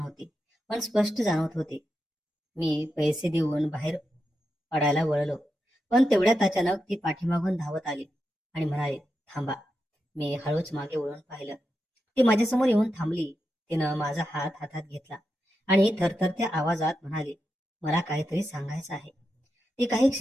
पण स्पष्ट जाणवत होती. मी पैसे देऊन बाहेर पडायला वळलो, पण तेवढ्यात अचानक ती पाठीमागून धावत आली आणि म्हणाली, "थांबा." मी हळूच मागे वळून पाहिलं. ती माझ्यासमोर येऊन थांबली. तिनं माझा हात हातात घेतला आणि थरथरत्या आवाजात म्हणाली, "मला काहीतरी सांगायचं आहे." ती काही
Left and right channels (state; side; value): normal; both; correlation 0.87